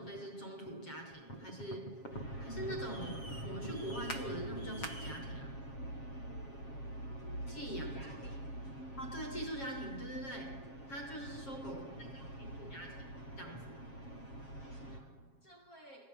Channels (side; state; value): right; late; 7.4 ms